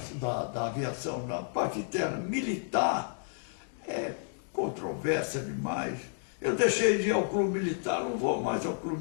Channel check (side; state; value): right; silent; digital silence